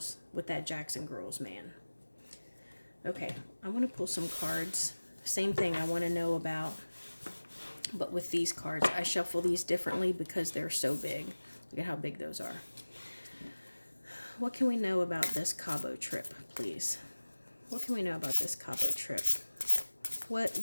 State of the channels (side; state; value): both; inverted; correlation -1.00